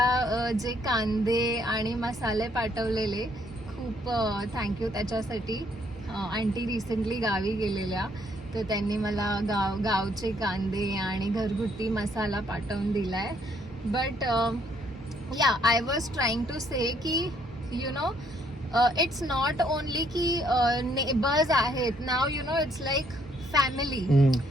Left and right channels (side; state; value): both; normal; correlation 0.68